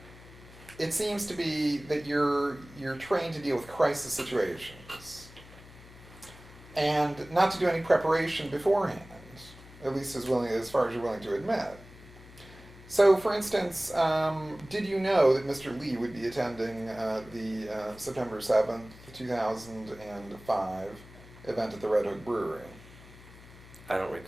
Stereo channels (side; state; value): left; noise; hum, 20 dB below the sound